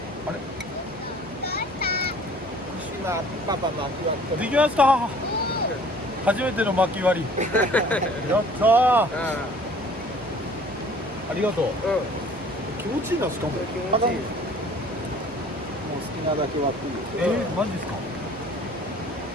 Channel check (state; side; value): normal; both; correlation 0.51